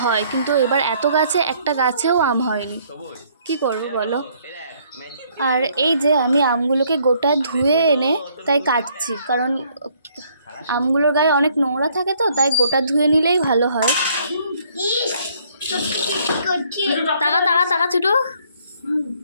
হয়, কিন্তু এবার এত গাছে একটা গাছেও আম হয়নি, কি করবো বলো। আর এই যে আমি আমগুলোকে গোটা ধুয়ে এনে তাই কাটছি, কারণ আমগুলোর গায়ে অনেক নোংরা থাকে, তো তাই গোটা ধুয়ে নিলেই ভালো হয়। টাকা টাকা টাকা ছোটো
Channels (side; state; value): both; inverted; correlation -0.65